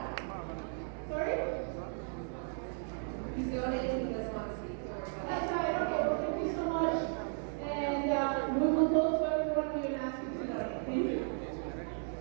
Sorry? He's donating, he doesn't want to speak. That's right. Okay, well, thank you so much. And we will go to everyone we will ask you to donate. Thank you.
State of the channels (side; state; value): left; silent; 54 dB below the other